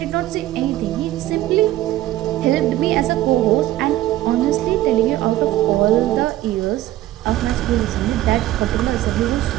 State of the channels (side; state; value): left; quieter; 14.8 dB